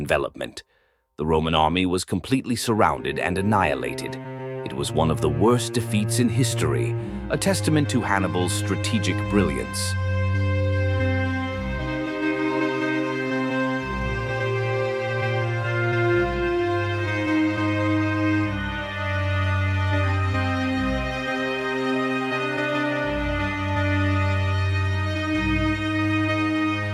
The Roman army was completely surrounded and annihilated. It was one of the worst defeats in history, a testament to Hannibal's strategic brilliance.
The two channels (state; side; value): identical; both; correlation 1.00